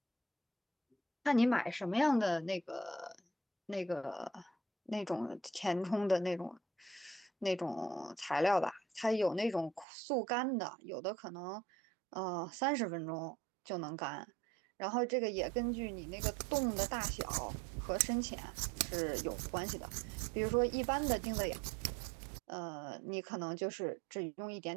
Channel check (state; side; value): drops out; left; at 9.9 s